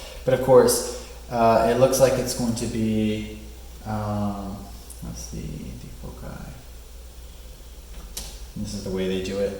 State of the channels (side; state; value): both; identical; correlation 1.00